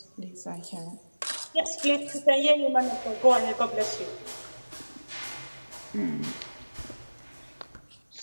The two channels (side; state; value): both; inverted; correlation -1.00